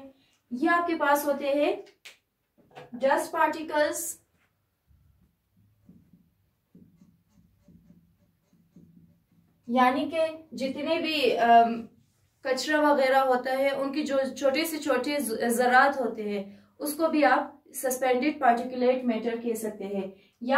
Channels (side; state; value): both; identical; correlation 1.00